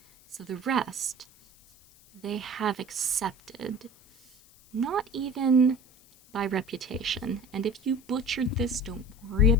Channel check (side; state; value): left; noise; hiss, 27 dB below the sound